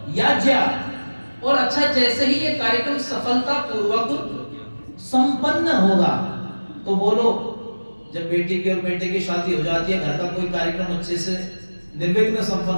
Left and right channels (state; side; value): inverted; both; correlation -1.00